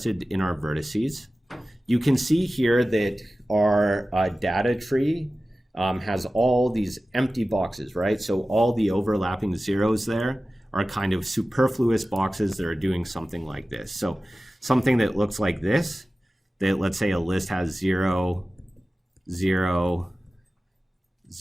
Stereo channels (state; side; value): normal; both; correlation 0.95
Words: in our vertices. You can see here that our data tree has all these empty boxes, right? So all the overlapping zeros there are kind of superfluous boxes that are doing something like this. So something that looks like this, that let's say a list has 0, 0,